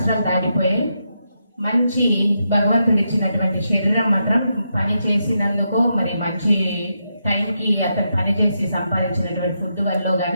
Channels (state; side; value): inverted; both; correlation -0.83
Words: దాటిపోయి మంచి భగవంతుడు ఇచ్చినటువంటి శరీరం మాత్రం పని చేసినందుకో మరి మంచి టైంకి అతను పని చేసి సంపాదించినటువంటి ఫుడ్ వల్ల